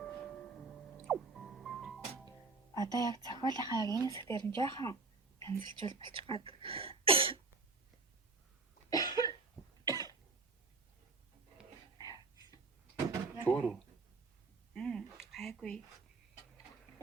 Одоо яг зохиолынхаа яг энэ хэсгээр нь жоохон янзлжуул болчих гад. Зөөр үү? Гайгүй.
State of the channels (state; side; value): quieter; left; 4.0 dB